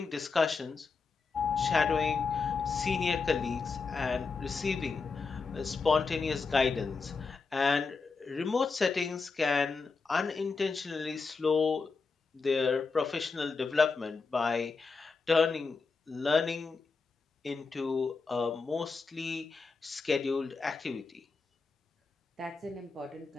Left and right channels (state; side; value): quieter; right; 4.6 dB